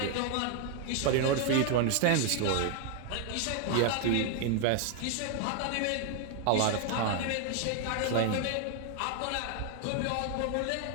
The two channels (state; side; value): different; both; correlation 0.00